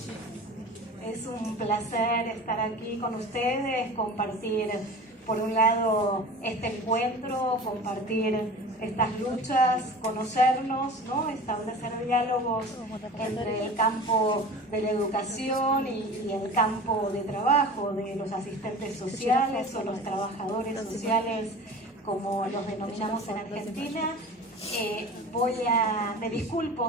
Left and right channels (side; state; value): both; normal; correlation 0.38